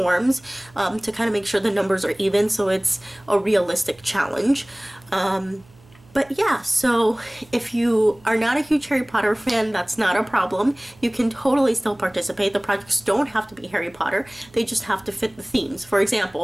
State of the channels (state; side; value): noise; right; hum, 27 dB below the sound